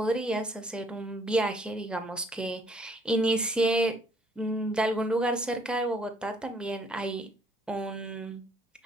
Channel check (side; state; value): both; normal; correlation 0.64